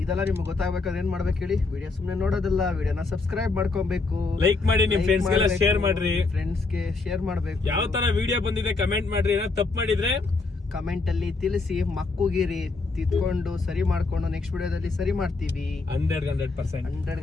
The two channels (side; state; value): right; quieter; 3.8 dB